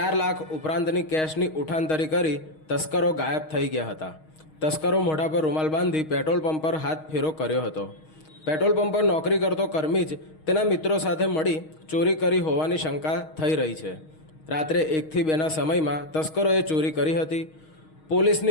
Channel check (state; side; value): late; right; 6.4 ms